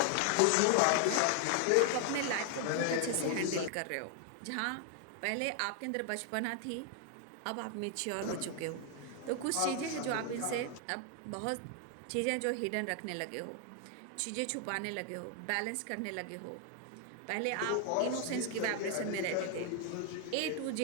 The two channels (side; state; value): both; different; correlation 0.00